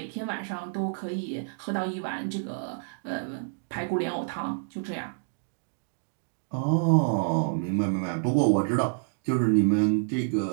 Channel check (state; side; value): silent; left; digital silence